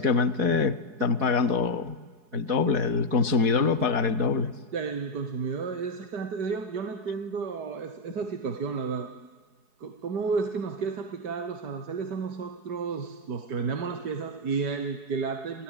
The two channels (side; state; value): left; late; 4.7 ms